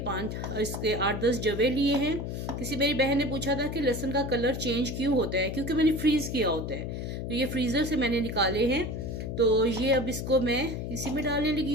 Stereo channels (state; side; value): noise; left; hum, 5 dB below the sound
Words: जवे लिए हैं। किसी मेरी बहन ने पूछा था कि लहसुन का कलर चेंज क्यों होता है, क्योंकि मैंने फ्रीज किया होता है, तो ये फ्रीजर से मैंने निकाले हैं। तो ये अब इसको मैं इसी में डालने लगी